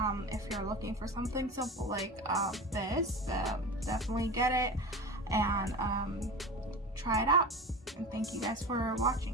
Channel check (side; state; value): both; normal; correlation 0.30